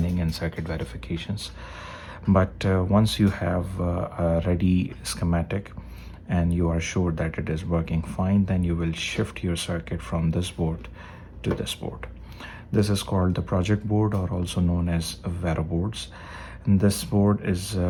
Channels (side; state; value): both; identical; correlation 1.00